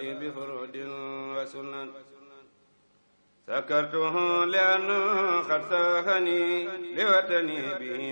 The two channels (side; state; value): both; inverted; correlation -1.00